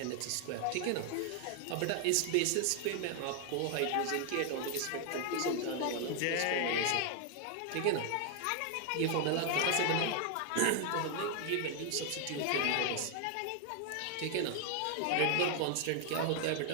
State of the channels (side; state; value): both; different; correlation 0.00